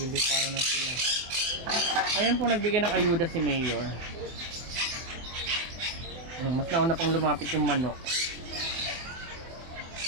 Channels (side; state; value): left; late; 24 ms